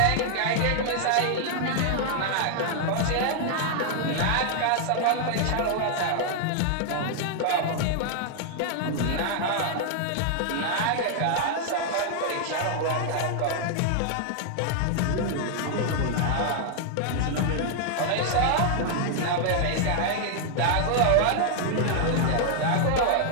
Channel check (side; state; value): both; different; correlation 0.00